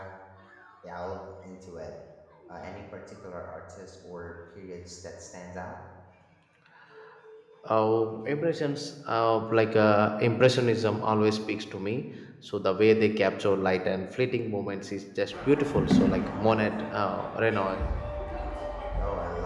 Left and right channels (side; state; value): both; identical; correlation 1.00